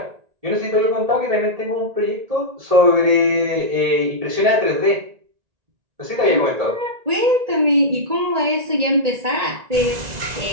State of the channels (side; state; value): left; late; 1.8 ms